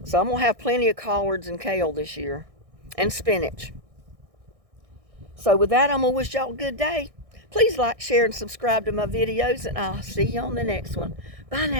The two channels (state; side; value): late; left; 1.6 ms